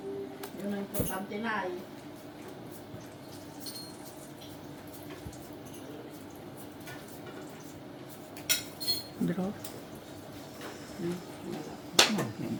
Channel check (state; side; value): identical; both; correlation 1.00